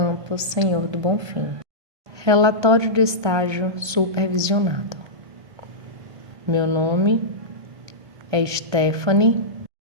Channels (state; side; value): late; left; 1.3 ms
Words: Senhor do Bonfim. Relatório de estágio supervisionado. Meu nome é Stephanie